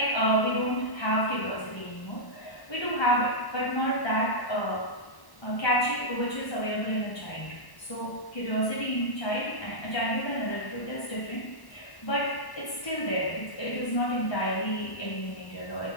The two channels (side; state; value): right; late; 1.1 ms